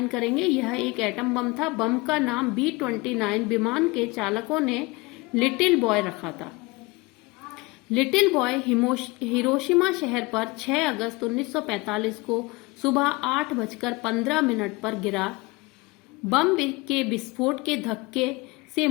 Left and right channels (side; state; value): right; quieter; 24.3 dB